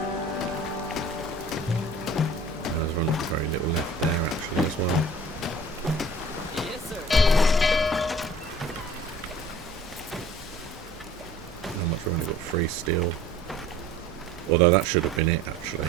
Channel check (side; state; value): both; normal; correlation 0.47